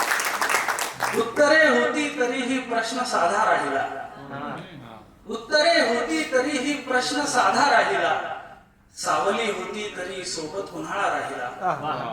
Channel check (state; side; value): identical; both; correlation 1.00